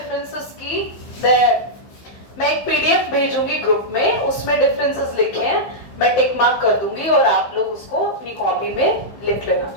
की मैं एक पीडीएफ भेजूंगी ग्रुप में, उसमें डिफरेंसेस लिखे हैं, मैं टिक मार्क कर दूंगी और आप लोग उसको अपनी कॉपी में लिख लेना,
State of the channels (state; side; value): late; right; 15 ms